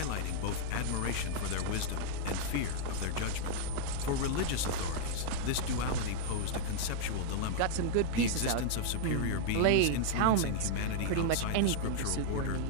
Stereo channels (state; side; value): different; both; correlation -0.01